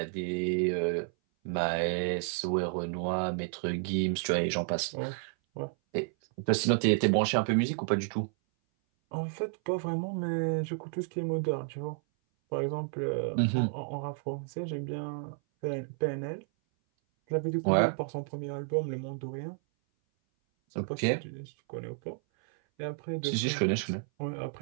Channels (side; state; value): left; silent; 57 dB below the other